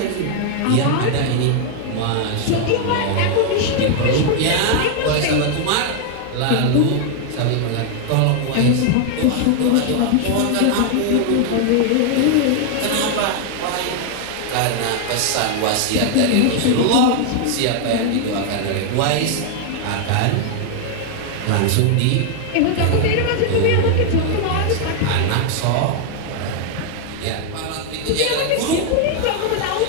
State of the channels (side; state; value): both; different; correlation 0.00